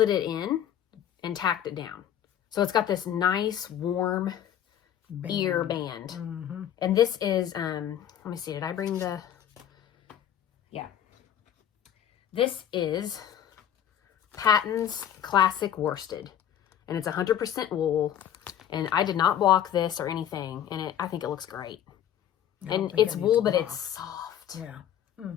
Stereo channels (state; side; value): quieter; right; 10.2 dB